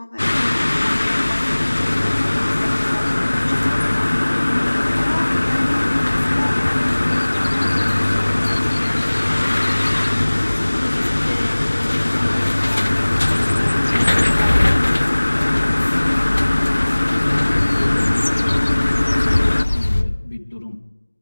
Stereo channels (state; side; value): inverted; both; correlation -1.00